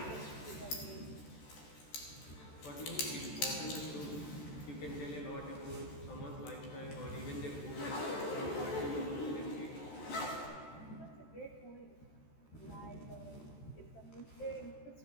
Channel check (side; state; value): right; late; 14 ms